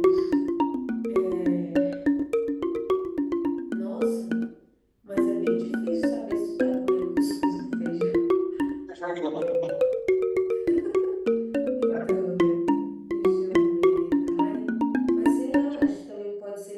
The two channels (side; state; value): both; identical; correlation 1.00